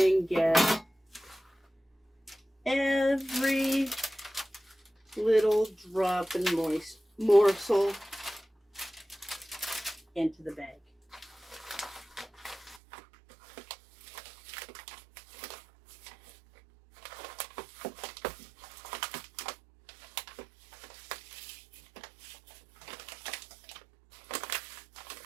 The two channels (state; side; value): drops out; left; at 12.8 s